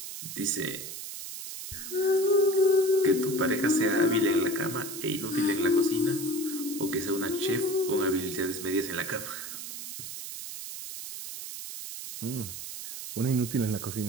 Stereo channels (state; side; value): noise; right; hiss, 9 dB below the sound